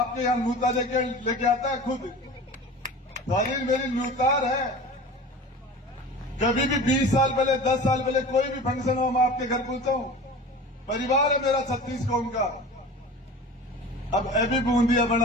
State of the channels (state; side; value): normal; both; correlation 0.36